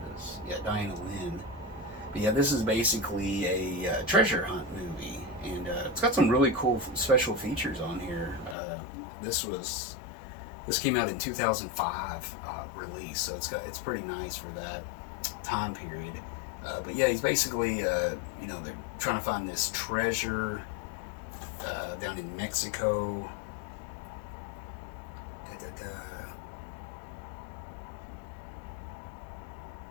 Yeah, Diana Lynn. But yeah, this is basically a treasure hunt movie, and it's got some really cool special features on here. This came out in 2005 release, so it's pretty nice for that time period. But yeah, he's basically they're trying to find this treasure down in Mexico.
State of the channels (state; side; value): drops out; right; at 8.6 s